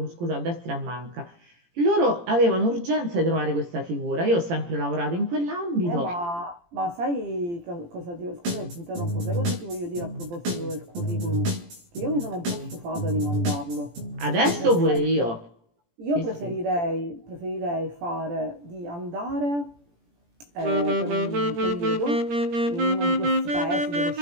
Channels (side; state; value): left; late; 17 ms